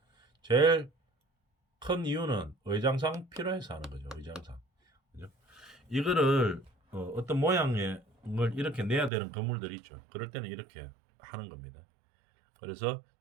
제일 큰 이유는 의장상 필요해서 하는 거죠. 의장상. 그죠? 이거를 어떤 모양의 걸 이렇게 내야 되는 건물들이 있죠. 그럴 때는 이렇게 하는 겁니다. 그래서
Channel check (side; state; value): left; drops out; at 9.1 s